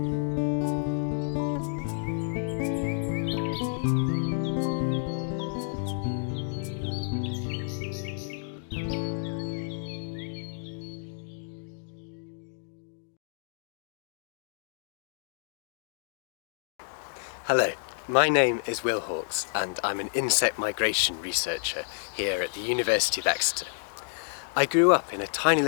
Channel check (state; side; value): silent; right; digital silence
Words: my name is Will Hawkes and I'm an insect migration researcher here at the University of Exeter. I grew up in a tiny